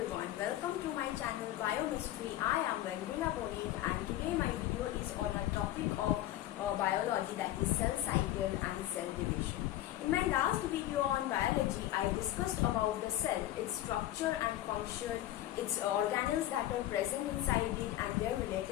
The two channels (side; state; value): right; quieter; 14.2 dB